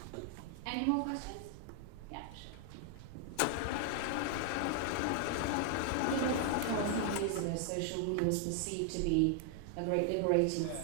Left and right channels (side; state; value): both; different; correlation 0.00